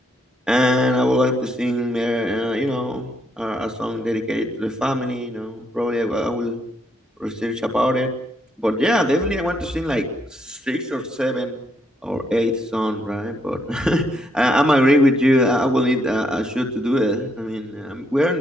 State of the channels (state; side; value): normal; both; correlation 0.74